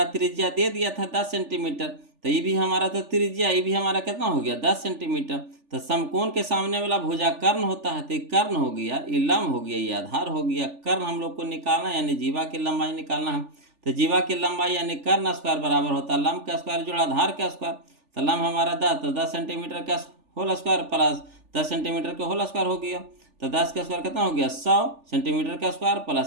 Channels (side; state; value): left; late; 3.4 ms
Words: त्रिज्या दे दिया था 10 सेंटीमीटर, तो ये भी हमारा तो त्रिज्या, ये भी हमारा कितना हो गया 10 सेंटीमीटर। तो समकोण के सामने वाला भुजा कर्ण होता है, तो ये कर्ण हो गया, ये लंब हो गया, ये आधार हो गया। कर्ण हम लोग को निकालना है, यानी जीवा की लंबाई निकालना है। तो जीवा की लंबाई यानी कर्ण स्क्वायर बराबर होता है लंब का स्क्वायर जोड़ा आधार का स्क्वायर। तो लंब हमारा 10, तो 10 सेंटीमीटर का होल स्क्वायर प्लस 10 सेंटीमीटर का होल स्क्वायर हो गया। तो 10 का स्क्वायर कितना हो गया 100 सेंटीमीटर का स्क्वायर,